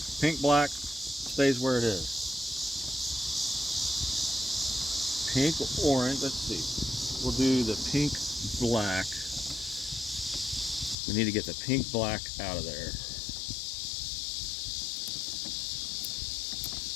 pink, black stays where it is. Pink, orange, let's see. We'll do the pink, black. We need to get the pink, black out of there.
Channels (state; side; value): drops out; right; at 11.0 s